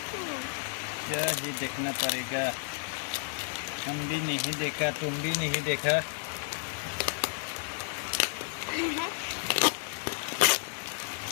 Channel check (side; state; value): right; silent; 57 dB below the other